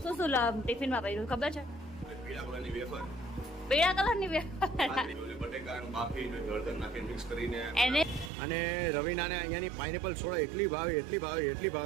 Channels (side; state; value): left; drops out; at 8.3 s